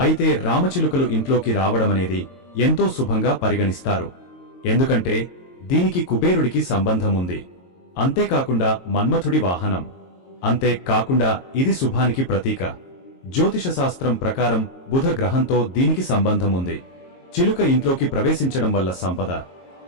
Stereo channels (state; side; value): late; right; 22 ms